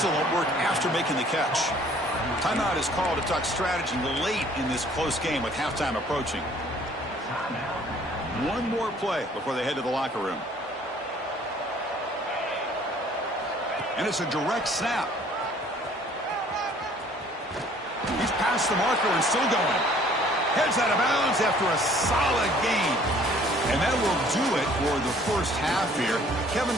work after making the catch. Timeout is called to talk strategy late in this close game with halftime approaching. One more play before they head to the locker room. And it's a direct snap. He's past the marker and still going. Heads out of bounds after a solid gain. And that will do it for the first half here. Kevin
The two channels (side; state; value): both; normal; correlation 0.57